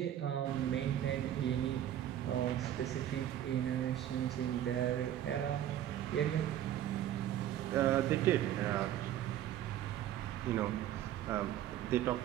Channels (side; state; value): left; quieter; 11.6 dB